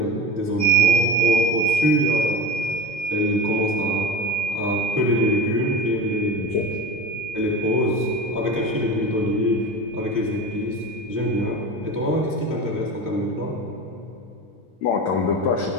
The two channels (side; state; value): both; normal; correlation 0.29